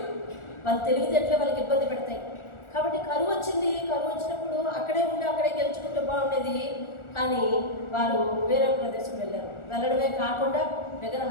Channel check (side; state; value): right; late; 1.4 ms